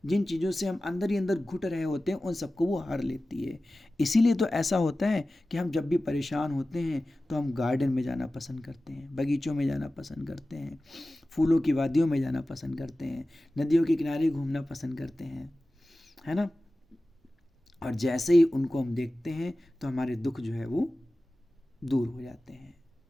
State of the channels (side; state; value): both; normal; correlation 0.96